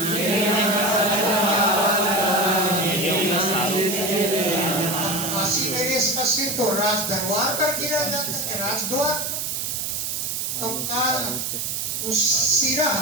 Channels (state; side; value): noise; right; hiss, 2 dB below the sound